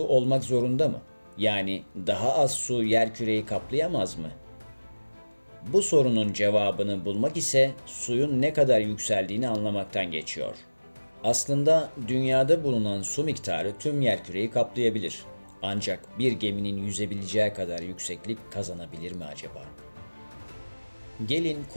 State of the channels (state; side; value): inverted; both; correlation -1.00